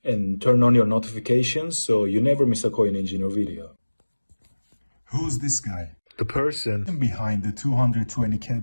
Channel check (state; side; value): inverted; both; correlation -1.00